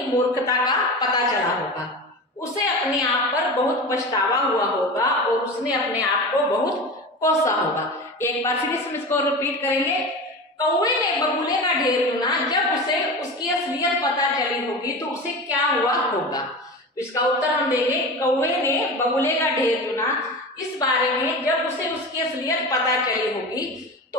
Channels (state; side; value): normal; both; correlation 0.29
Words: मूर्खता का पता चला होगा। उसे अपने आप पर बहुत पछतावा हुआ होगा और उसने अपने आप को बहुत कोसा होगा। एक बार फिर इसको रिपीट करेंगे। कौवे ने बबूले का ढेर चुना, जब उसे उसकी असलियत पता चली होगी तो उसे क्या हुआ होगा। तो इसका उत्तर हम देंगे। कौवे ने बबूले का ढेर चुना, इस बारे में जब उसे उसकी असलियत पता चली होगी